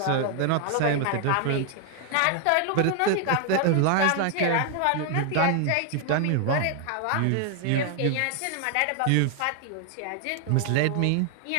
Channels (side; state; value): both; different; correlation 0.00